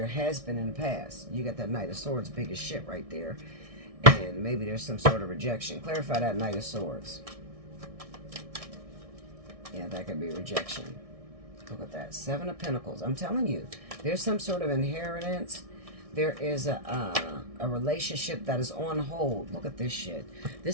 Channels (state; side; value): late; left; 1.6 ms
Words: has been in the past. You got that Knight of Swords, big as shit right there. And maybe there's some sort of rejection. Clarify that Knight of Swords. Yeah, that could be rejection. Look at that. Seven of Pentacles. I'm telling you, there's some sort of inheritance. There is a relationship that is on hold. Look at this shit.